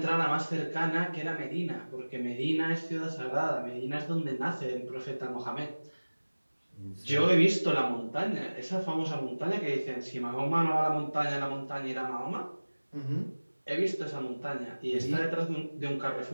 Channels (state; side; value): inverted; both; correlation -1.00